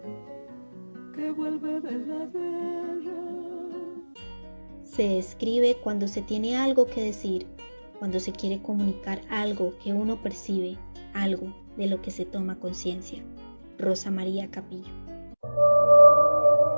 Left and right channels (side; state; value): both; inverted; correlation -1.00